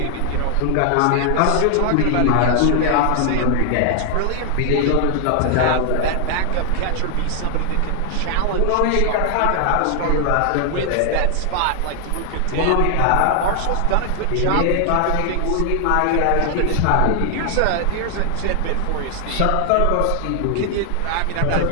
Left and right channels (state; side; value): different; both; correlation 0.00